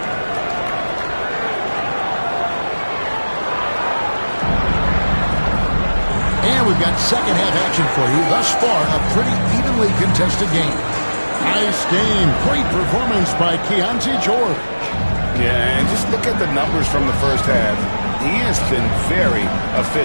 And we've got second half action for you. Thus far, a pretty evenly contested game. Nice game. Great performance by Keontae George. Yeah, and just look at the numbers from the first half. He has been very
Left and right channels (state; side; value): inverted; both; correlation -1.00